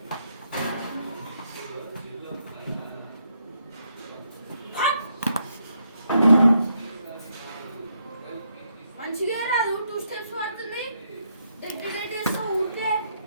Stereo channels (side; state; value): both; inverted; correlation -0.76